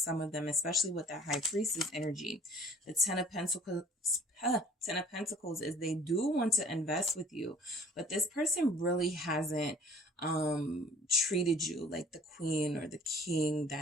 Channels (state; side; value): normal; both; correlation 0.51